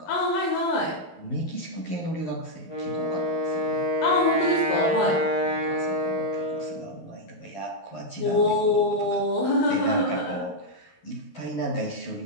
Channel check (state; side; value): late; right; 11 ms